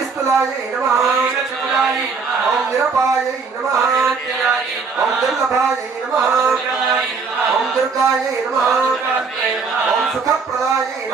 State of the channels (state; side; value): quieter; left; 4.9 dB